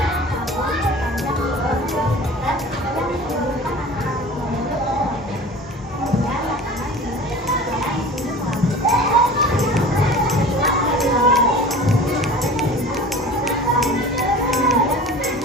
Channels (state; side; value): normal; both; correlation 0.40